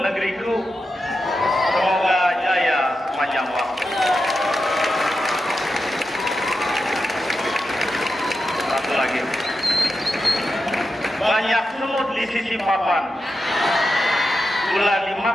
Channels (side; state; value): both; normal; correlation 0.89